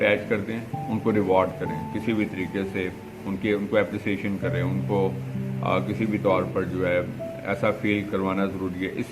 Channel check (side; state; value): both; identical; correlation 1.00